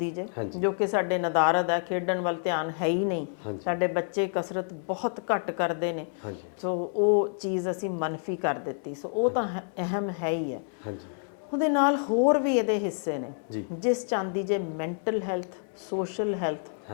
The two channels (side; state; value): right; silent; 59 dB below the other